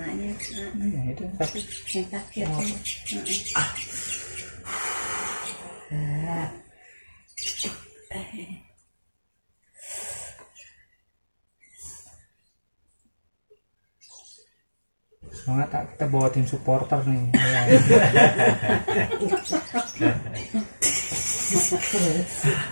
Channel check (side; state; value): both; inverted; correlation -1.00